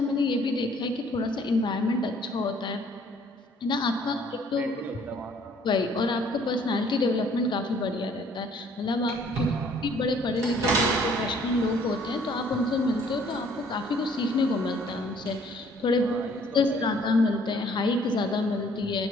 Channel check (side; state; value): both; normal; correlation 0.59